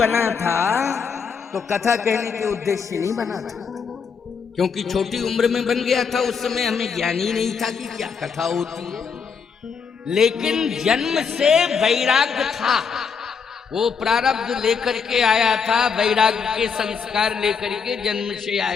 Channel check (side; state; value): right; quieter; 6.0 dB